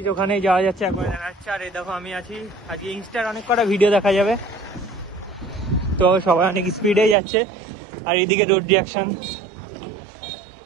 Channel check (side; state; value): left; drops out; at 7.2 s